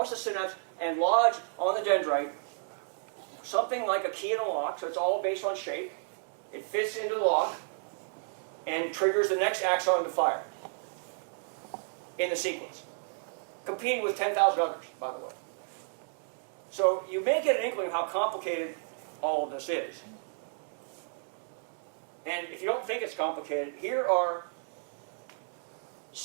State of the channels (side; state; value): left; silent; digital silence